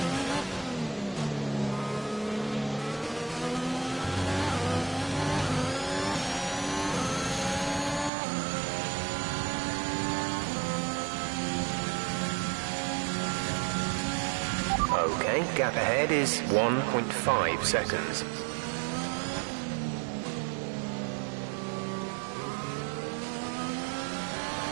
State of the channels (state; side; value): drops out; left; at 8.1 s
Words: Okay, gap ahead is 1.5 seconds.